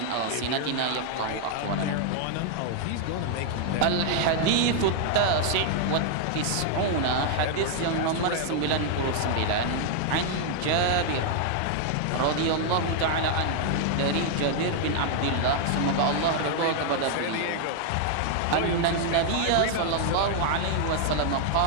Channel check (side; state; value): both; different; correlation 0.00